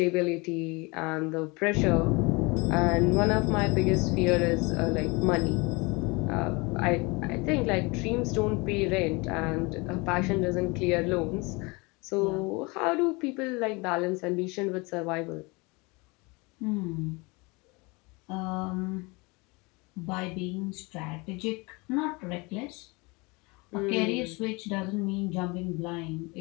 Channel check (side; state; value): right; quieter; 26.8 dB